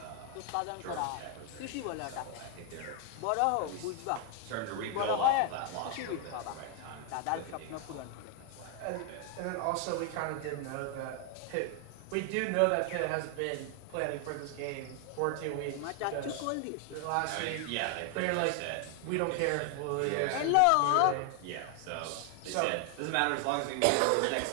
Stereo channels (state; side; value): different; both; correlation 0.00